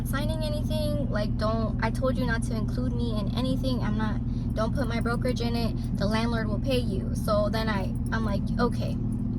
signing anything. Like, I told you not to include me in anything. Don't put my brokerage in it. The landlord will pay you. So then I'm like, okay.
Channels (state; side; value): identical; both; correlation 1.00